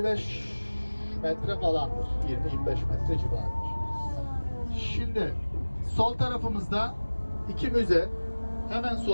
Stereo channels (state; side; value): inverted; both; correlation -1.00